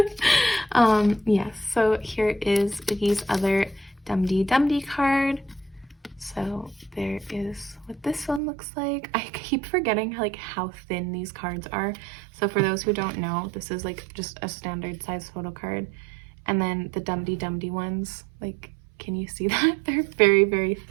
yes, so here is Oogie's other Dum-Dee card. So there is what this one looks like. I keep forgetting like how thin these cards are. So for those who don't know, this is like just a standard size photo card. And then the Dum-Dee ones, like, can you see that? They're very, very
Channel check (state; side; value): drops out; left; at 8.4 s